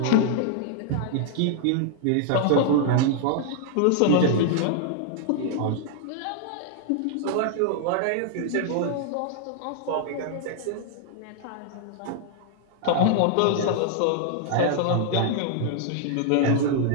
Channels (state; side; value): different; both; correlation -0.01